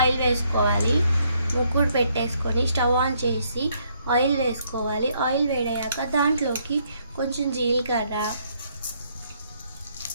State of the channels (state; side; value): inverted; both; correlation -0.71